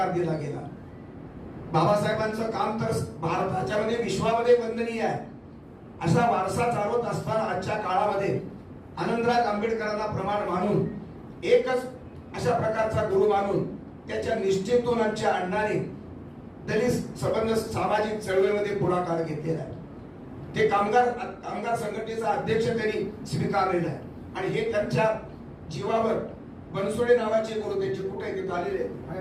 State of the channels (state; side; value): identical; both; correlation 1.00